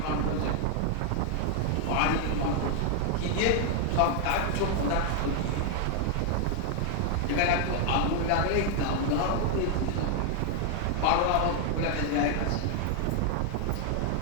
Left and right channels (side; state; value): both; different; correlation 0.00